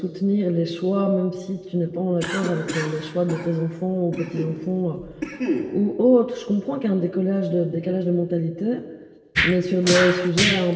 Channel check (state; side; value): identical; both; correlation 1.00